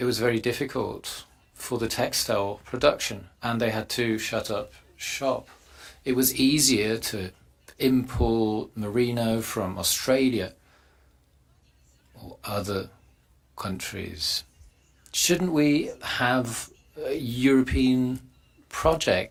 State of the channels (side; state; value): both; identical; correlation 1.00